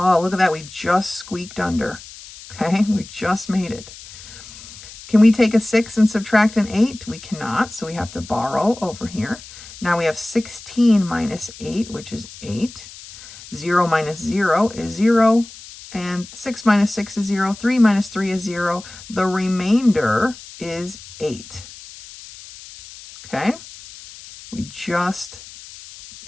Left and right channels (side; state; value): left; noise; hiss, 17 dB below the sound